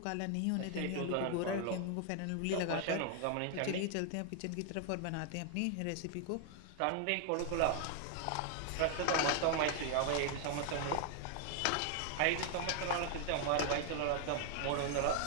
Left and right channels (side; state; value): both; different; correlation 0.00